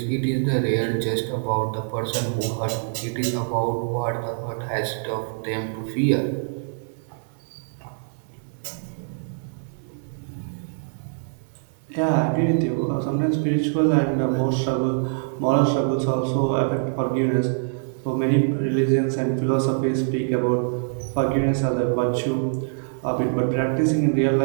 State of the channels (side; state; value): left; silent; digital silence